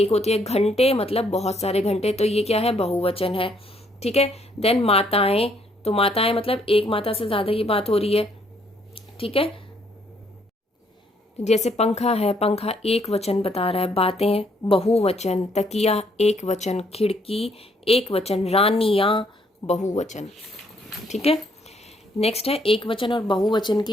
होती है, घंटे मतलब बहुत सारे घंटे, तो ये क्या है, बहुवचन है। ठीक है। देन माताएं, तो माताएं मतलब एक माता से ज्यादा की बात हो रही है। ठीक है। जैसे पंखा है, पंखा एक वचन बता रहा है। बातें बहुवचन, तकिया एक वचन, खिड़की एक वचन, रानियां बहुवचन। ठीक है। नेक्स्ट है एक वचन और बहुवचन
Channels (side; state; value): both; normal; correlation 0.69